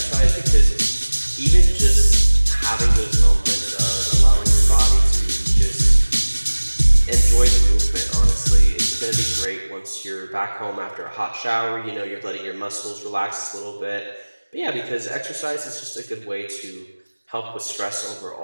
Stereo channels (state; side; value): inverted; both; correlation -1.00